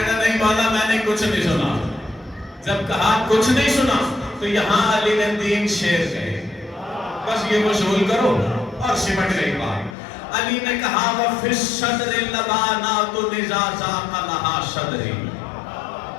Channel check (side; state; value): right; drops out; at 10.0 s